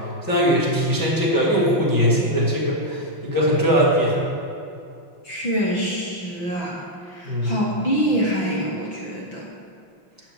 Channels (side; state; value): right; late; 5.9 ms